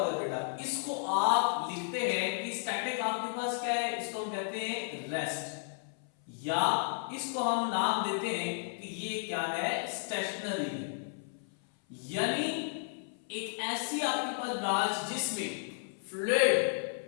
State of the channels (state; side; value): silent; right; 56 dB below the other